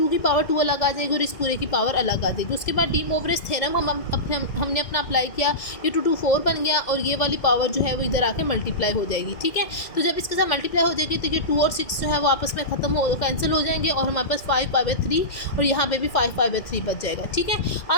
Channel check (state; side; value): late; right; 2.1 ms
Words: की पावर 2 अलग आ जाएगी और इस पूरे की पावर अलग आ जाएगी। उसके बाद डी मोवरेज थ्योरम हमने अपना अप्लाई किया, ये 2 2 4 बन गया और ये वाली पावर जो है वो इधर आके मल्टीप्लाई हो जाएगी। ठीक है, तो जब इसके साथ मल्टीप्लाई हो जाएगी तो ये 2 और 6 जो है वो आपस में कैंसिल हो जाएंगे और हमारे पास 5 π/3 और यहाँ पे भी 5 π/3 बच जाएगा। ठीक है,